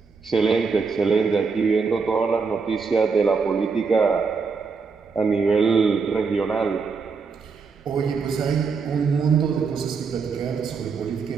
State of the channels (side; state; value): left; quieter; 5.1 dB